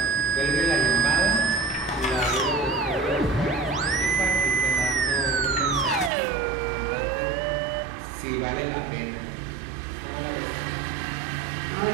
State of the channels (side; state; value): left; drops out; at 6.1 s